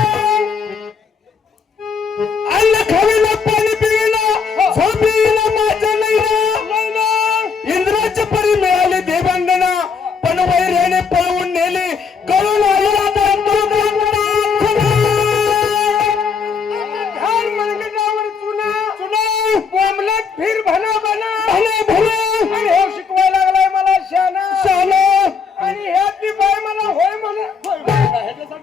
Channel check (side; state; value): right; quieter; 5.7 dB